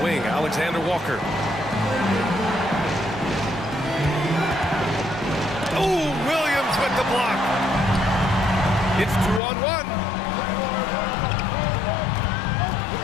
wing, Alexander Walker. Oh, Williams with the block. It's 2-on-1.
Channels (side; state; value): right; drops out; at 9.4 s